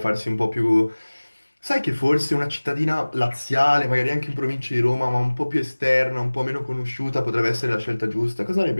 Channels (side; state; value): both; inverted; correlation -1.00